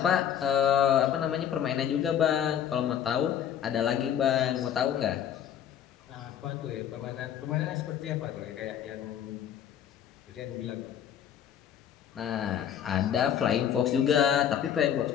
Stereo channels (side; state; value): right; quieter; 9.5 dB